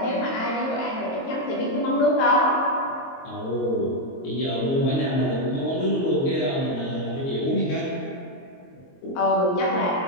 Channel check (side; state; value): right; late; 22 ms